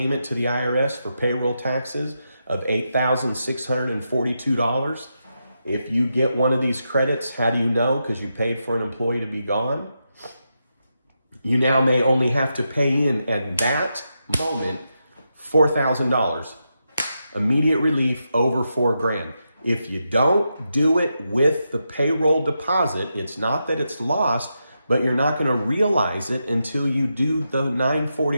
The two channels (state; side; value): inverted; both; correlation -0.85